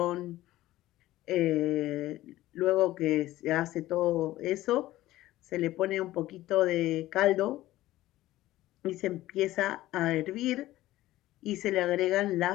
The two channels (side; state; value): right; quieter; 15.8 dB